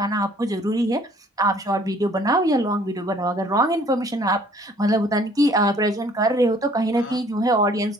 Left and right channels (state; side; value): normal; both; correlation 0.57